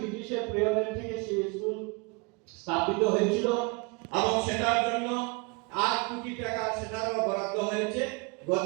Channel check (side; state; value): left; quieter; 29.3 dB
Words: পিরিয়ডের থেকে সেই স্কুল স্থাপিত হয়েছিল এবং সেটার জন্য 8 কোটি টাকা সেটারও বরাদ্দ হয়েছে,